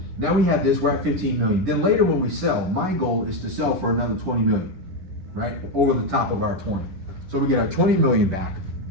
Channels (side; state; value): left; late; 11 ms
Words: Now we have this, we're at 15 million. Then later when we sell, my goal is to sell for another 20 million, right? Over the top of our 20. So we get our 20 million back.